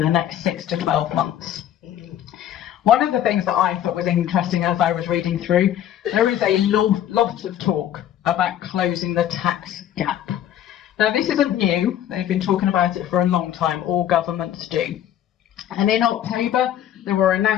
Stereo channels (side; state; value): right; quieter; 11.1 dB